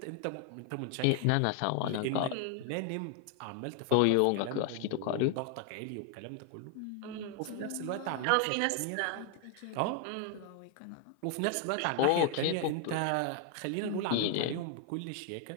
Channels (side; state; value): both; different; correlation 0.00